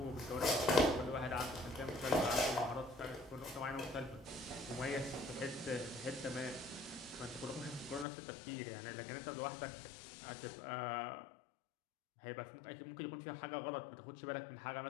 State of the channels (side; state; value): right; drops out; at 8.1 s